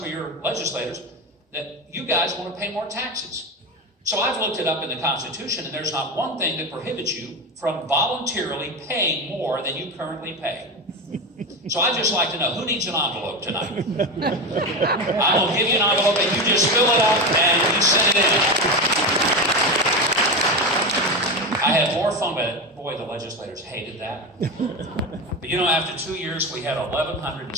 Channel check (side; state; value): both; normal; correlation 0.19